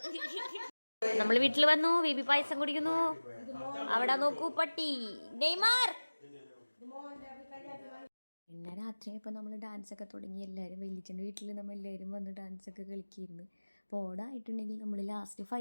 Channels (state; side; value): inverted; both; correlation -1.00